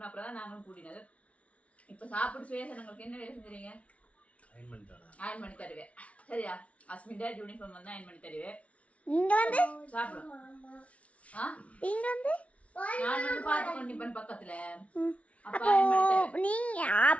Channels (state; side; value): late; right; 0.064 ms